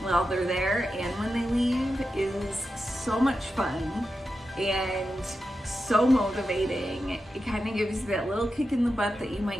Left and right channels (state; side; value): normal; both; correlation 0.90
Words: they're there and when they leave is so much fun and so motivating. It kind of gives you that little kick in the butt that you